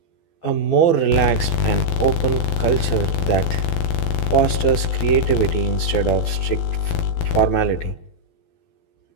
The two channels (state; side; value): late; right; 12 ms